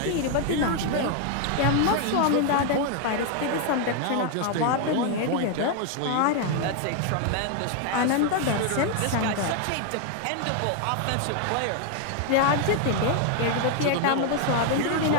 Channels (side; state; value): both; different; correlation 0.00